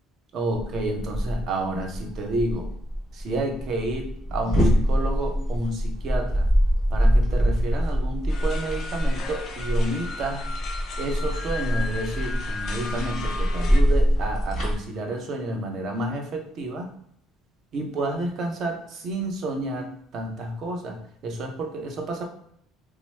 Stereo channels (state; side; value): normal; both; correlation 0.84